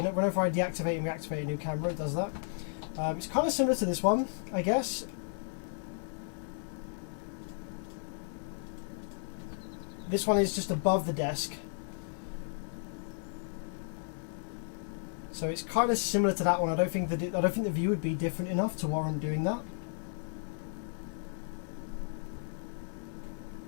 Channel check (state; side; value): silent; right; digital silence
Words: I deactivate and reactivate a new camera, it does that. It's kind of similar to this one, I guess. This one is just above the desk. So it's kind of similar to that one. I don't think the view would be different enough to warrant doing that.